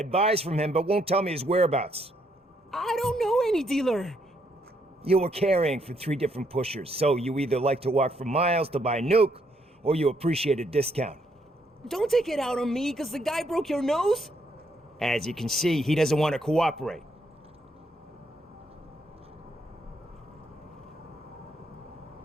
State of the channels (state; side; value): normal; both; correlation 0.73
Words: buys from him but won't tell me his whereabouts. I don't know any dealer. You were carrying for 3 different pushers, so you either like to walk for miles to buy nuke, or you appreciate a discount. Don't take it out on me, because the guy broke your nose? As you can see, he doesn't want to cooperate.